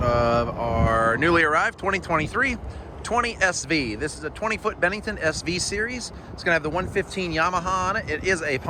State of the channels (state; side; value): identical; both; correlation 1.00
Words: our newly arrived 2023 20SV. This is a 20-foot Bennington SV series. It's going to have the 115 Yamaha on it. It is a